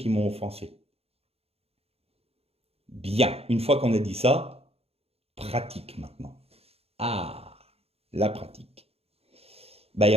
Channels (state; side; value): late; left; 0.29 ms